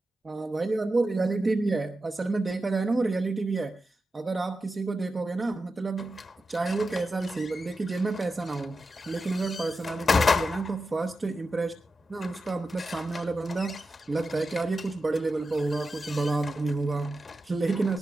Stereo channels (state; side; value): normal; both; correlation 0.90